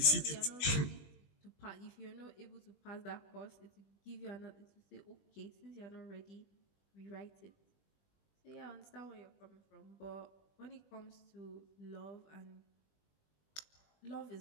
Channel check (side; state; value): right; late; 20 ms